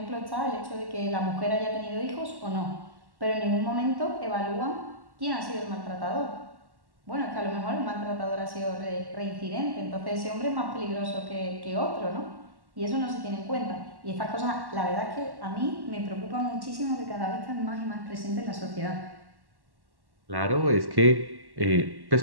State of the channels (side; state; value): left; late; 1.1 ms